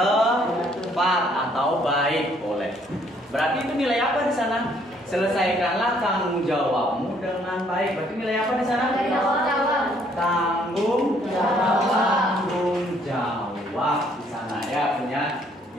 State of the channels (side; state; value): both; normal; correlation 0.65